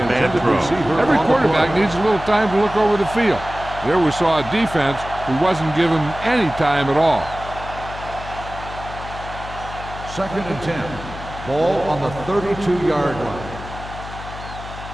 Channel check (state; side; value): noise; left; hum, 12 dB below the sound